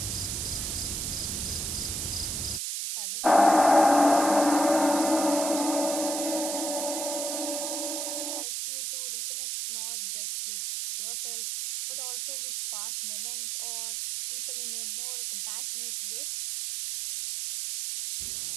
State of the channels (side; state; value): right; noise; hiss, 3 dB below the sound